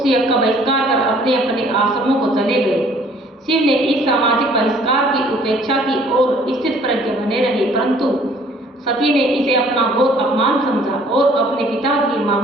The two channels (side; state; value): both; normal; correlation 0.57